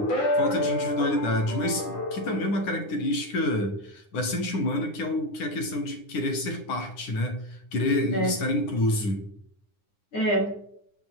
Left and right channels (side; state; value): right; late; 9.8 ms